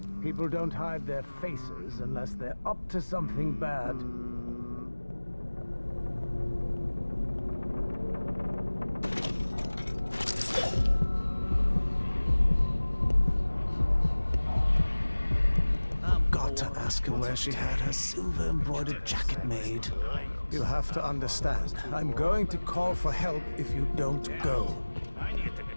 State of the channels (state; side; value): inverted; both; correlation -1.00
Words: People don't hide their faces unless they're up to something bad. Got to ask her where she had her silver embroidered jacket made. You'll have to understand, I'm going to call for help if you don't go. I need to